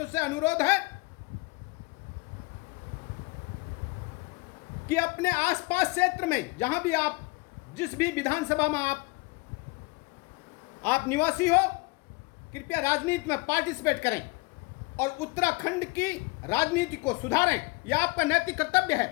से अनुरोध है कि अपने आसपास क्षेत्र में, जहां भी आप, जिस भी विधानसभा में आप निवासी हो, कृपया राजनीति में पार्टिसिपेट करें और उत्तराखंड की राजनीति को सुधारें। यह आपका नैतिक कर्तव्य है।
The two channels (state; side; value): quieter; right; 26.4 dB